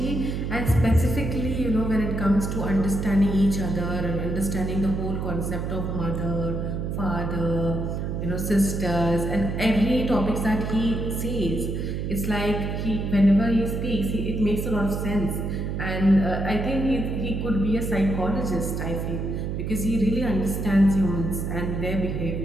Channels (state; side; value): noise; right; hum, 2 dB below the sound